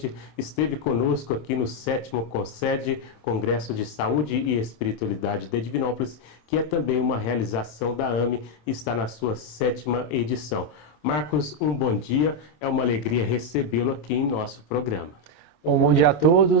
esteve conosco aqui no 7º CONSED, Congresso de Saúde e Espiritualidade de Divinópolis, que é também uma realização da AME, está na sua 7ª edição. Marcos, um bom dia, é uma alegria recebê-lo aqui em nosso programa. Bom dia a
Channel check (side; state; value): right; late; 26 ms